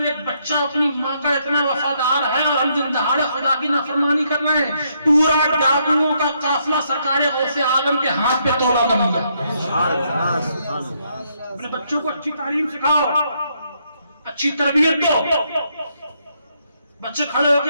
ایک بچہ اپنی ماں کا اتنا وفادار ہے اور ہم دن دہاڑے خدا کی نافرمانی کر رہے ہیں، پورا ڈاکوؤں کا قافلہ سرکار غوث اعظم کے ہاتھ پہ توبہ کر لیا۔ اپنے بچوں کو اچھی تعلیم سکھاؤ، اچھی تربیت دو۔ بچے کھڑے ہو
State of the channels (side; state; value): both; inverted; correlation -0.74